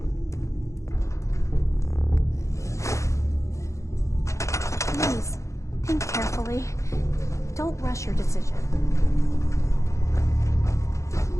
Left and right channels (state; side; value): late; right; 0.15 ms